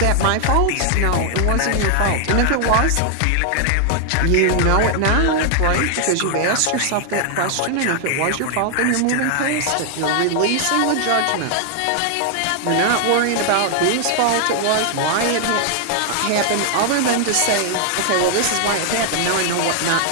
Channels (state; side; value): different; both; correlation 0.00